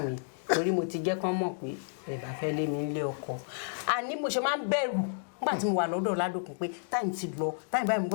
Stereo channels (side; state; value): right; silent; digital silence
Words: mi torí mo ti jẹ́ kán mọ̀ pé ẹ bá fẹ́ lé mi nílé ọkọ àní mo ṣe máa ń bẹ̀rù nígbà tí mo wà lọ́dọ̀ Ládòkun pé táìmù ti lọ táìmù báyìí mo